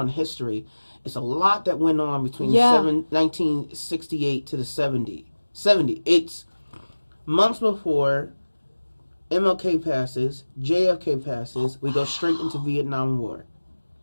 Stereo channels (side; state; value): both; inverted; correlation -1.00